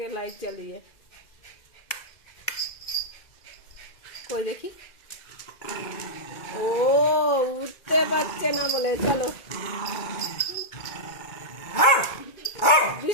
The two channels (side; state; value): right; late; 2.1 ms